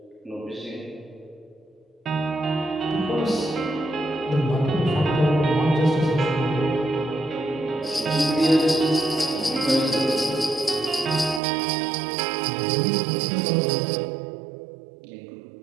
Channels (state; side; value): drops out; left; at 11.4 s